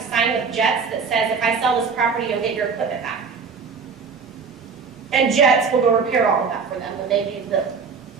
sign with Jets that says if I sell this property, you'll get your equipment back. And Jets will go repair all of that for them when they do the,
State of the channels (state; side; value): quieter; left; 5.4 dB